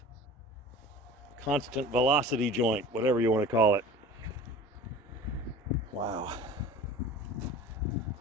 Constant velocity joint, whatever you want to call it. Wow.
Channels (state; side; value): normal; both; correlation 0.40